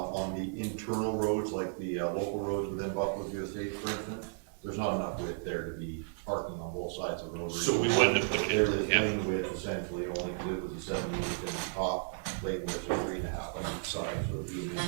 the internal roads, like the local roads within Buffalo View Estates, for instance, there's not enough width there to be parking on both sides of the road. So we wouldn't have put it There in, is lane width essentially, only because it was a 7 inch and the top lane width was 3.5 on each side, so it'd be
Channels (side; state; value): left; silent; digital silence